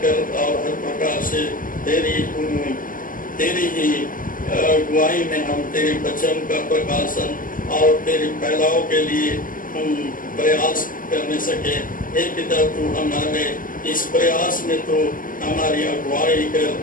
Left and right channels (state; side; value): late; right; 0.40 ms